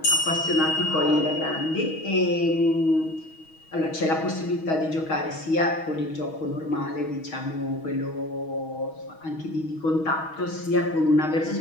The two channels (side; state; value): right; late; 6.3 ms